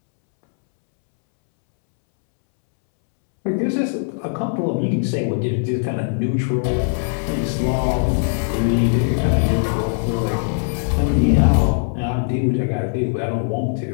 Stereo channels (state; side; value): silent; right; 66 dB below the other